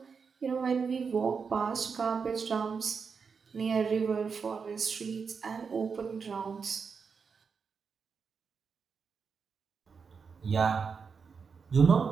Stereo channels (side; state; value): left; quieter; 5.7 dB